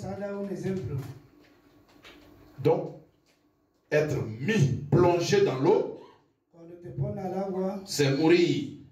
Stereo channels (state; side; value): identical; both; correlation 1.00